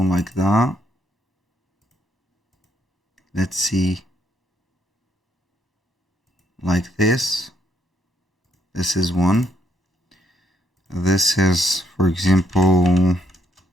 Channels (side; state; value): both; normal; correlation 0.72